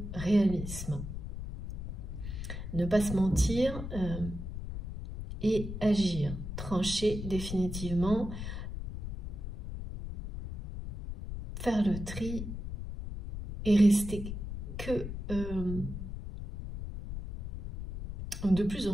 réalisme. Ne pas se mentir et agir. Trancher définitivement. Faire le tri et rester que de plus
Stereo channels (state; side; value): noise; left; rumble, 7 dB below the sound